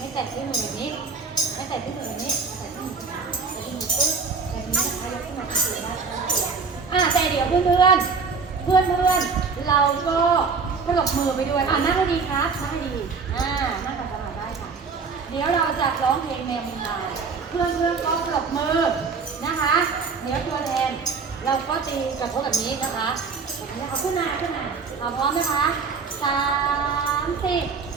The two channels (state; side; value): quieter; left; 5.0 dB